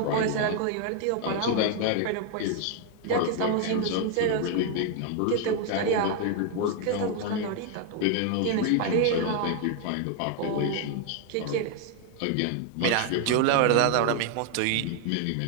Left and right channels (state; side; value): different; both; correlation 0.00